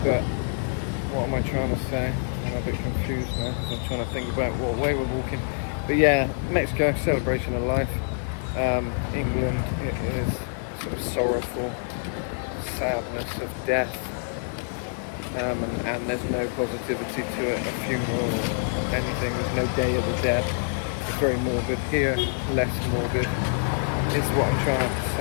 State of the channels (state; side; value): silent; right; digital silence